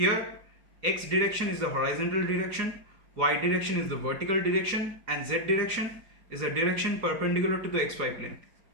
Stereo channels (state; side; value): late; left; 4.9 ms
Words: x direction is the horizontal direction, y direction is the vertical direction, and z direction is the direction perpendicular to the xy plane.